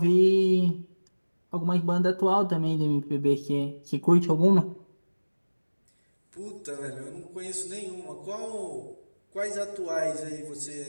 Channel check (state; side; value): inverted; both; correlation -1.00